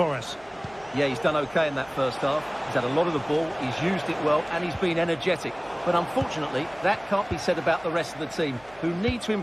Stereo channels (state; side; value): noise; right; hum, 27 dB below the sound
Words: us. Yeah, he's done okay in that first half. He's had a lot of the ball, he's used it well, and he's been energetic. But unfortunately, that can't be said about the rest of the team, who need to